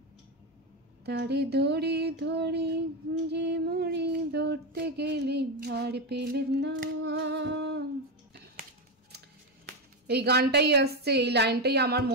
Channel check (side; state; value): both; normal; correlation 0.10